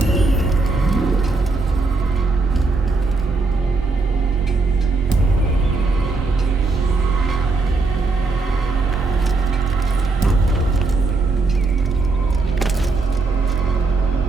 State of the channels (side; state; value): left; quieter; 3.7 dB